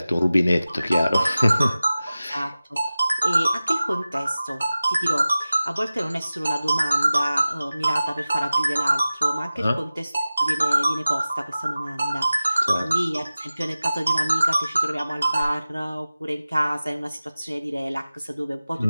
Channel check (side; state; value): both; inverted; correlation -0.96